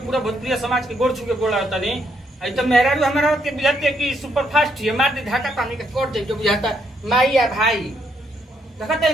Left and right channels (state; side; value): normal; both; correlation 0.74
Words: भोजपुरिया समाज के गोड़ छुके गोड़ लगता नहीं। आई तो मेहरारू हमारा के बुझाते कि सुपर फास्ट है मार दे धाका पानी के कोट दे जो बुझाता माई या भाई